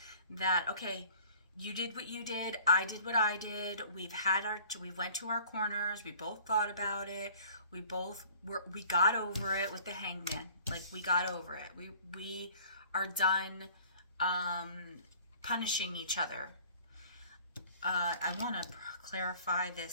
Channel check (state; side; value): inverted; both; correlation -0.50